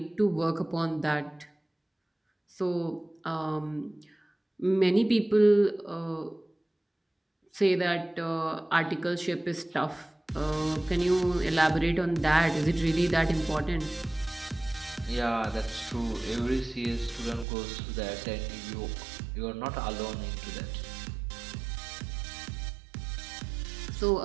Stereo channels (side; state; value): left; drops out; at 17.4 s